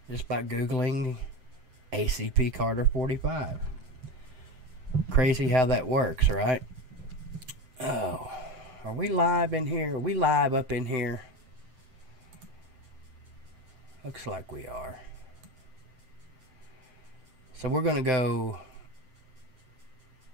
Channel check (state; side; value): late; left; 7.8 ms